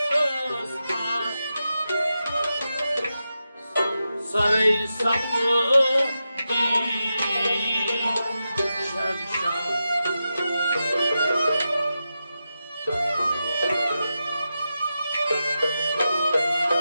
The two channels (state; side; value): inverted; both; correlation -0.90